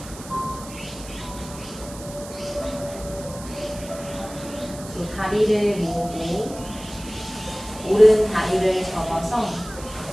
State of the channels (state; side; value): noise; right; hiss, 15 dB below the sound